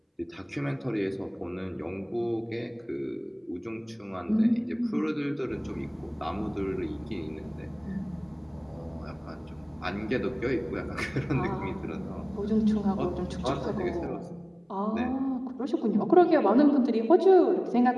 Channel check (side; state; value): both; identical; correlation 1.00